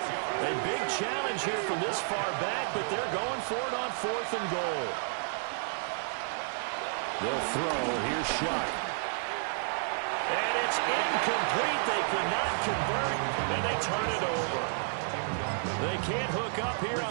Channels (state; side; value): silent; left; digital silence